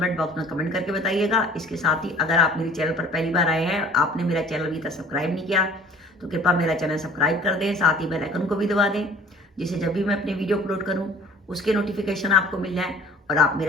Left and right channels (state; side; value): normal; both; correlation 0.50